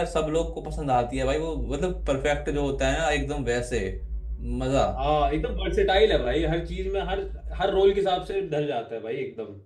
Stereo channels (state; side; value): identical; both; correlation 1.00